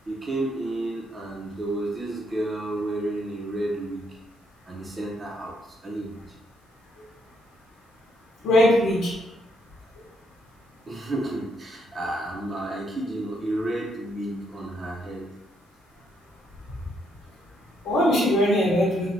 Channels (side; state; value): both; normal; correlation 0.74